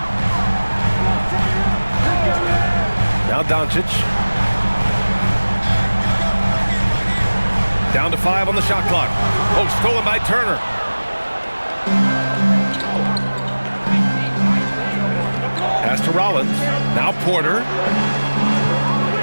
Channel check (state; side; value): inverted; both; correlation -1.00